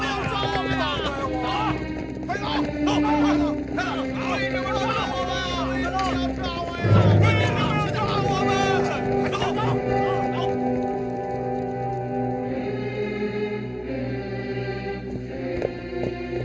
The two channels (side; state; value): both; identical; correlation 1.00